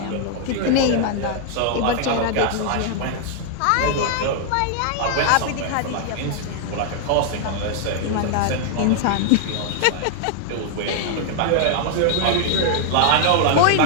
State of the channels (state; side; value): different; both; correlation 0.00